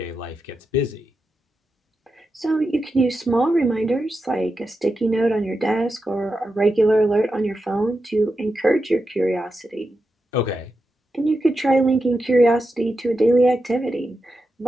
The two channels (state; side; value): normal; both; correlation 0.89